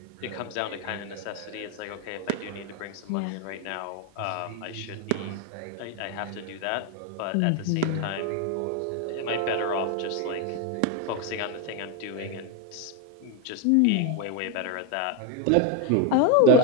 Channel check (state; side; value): different; both; correlation 0.02